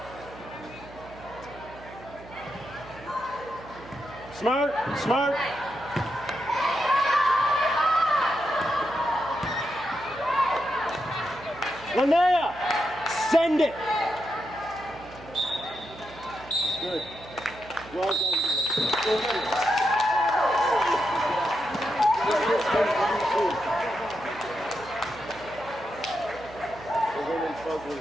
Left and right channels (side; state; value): right; noise; hum, 18 dB below the sound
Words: Smart, smart. Linnea, send it. Good. Well done. We're winning fugly